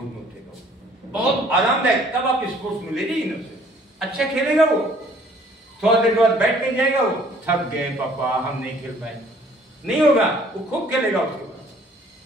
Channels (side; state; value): both; normal; correlation 0.58